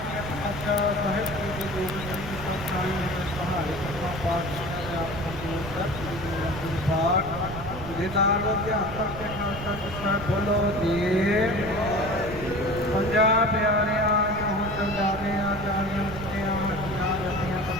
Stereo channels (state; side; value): noise; right; rumble, 10 dB below the sound